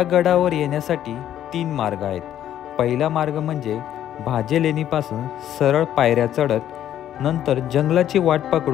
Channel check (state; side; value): quieter; right; 11.2 dB